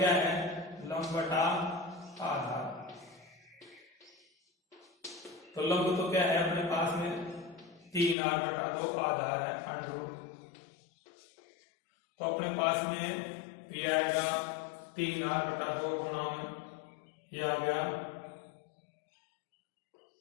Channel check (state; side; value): drops out; right; at 8.2 s